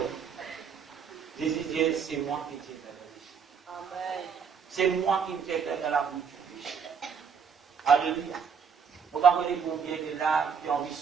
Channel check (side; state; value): left; quieter; 6.5 dB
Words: Jésus dit, c'est moi qui t'ai fait. Amen. C'est moi qui t'ai fait dans la bouche du péché. Alléluia. Vous comprenez combien de là qui ont envie de